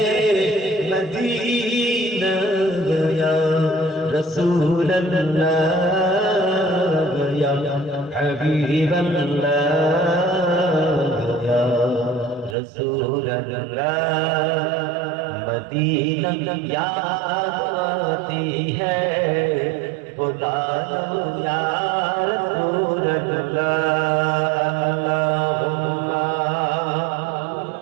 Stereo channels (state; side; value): drops out; left; at 12.6 s